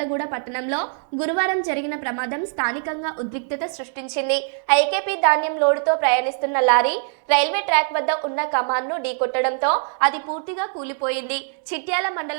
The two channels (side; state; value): left; silent; 64 dB below the other